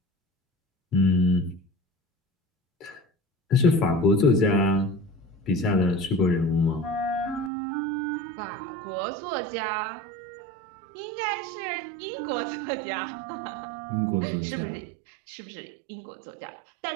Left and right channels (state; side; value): drops out; left; at 7.5 s